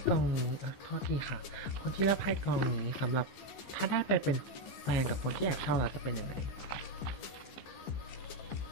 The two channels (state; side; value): late; right; 15 ms